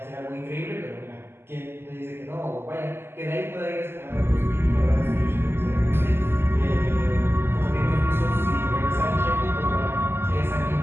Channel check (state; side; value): late; left; 0.12 ms